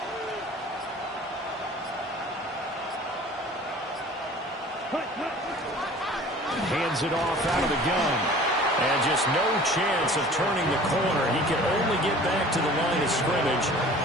Hands it off out of the gun. And just no chance of turning the corner. He can only get back to the line of scrimmage.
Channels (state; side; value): normal; both; correlation 0.46